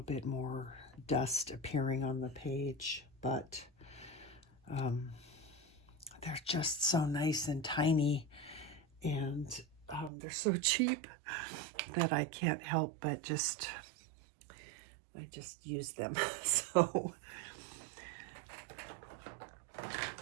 bit more dust appearing on the page, but they're just so nice and tiny, and they're so cheap that I can't help but I just use them. So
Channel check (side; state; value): left; drops out; at 10.1 s